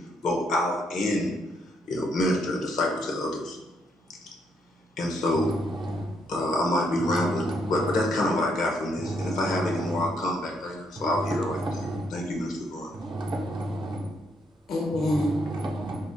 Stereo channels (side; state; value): both; normal; correlation 0.74